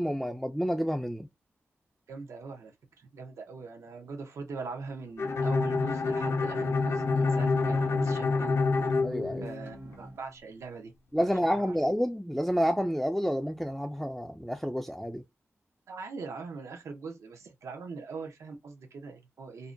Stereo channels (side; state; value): both; normal; correlation 0.93